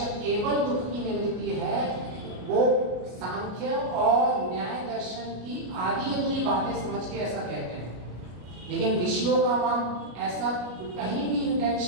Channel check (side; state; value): left; late; 33 ms